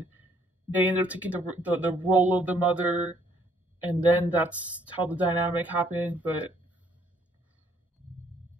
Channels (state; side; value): normal; both; correlation 0.65